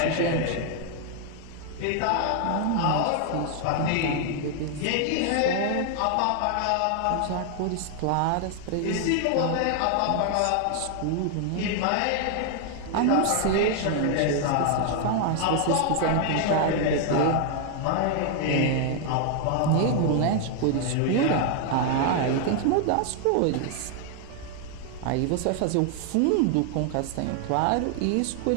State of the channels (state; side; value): different; both; correlation 0.00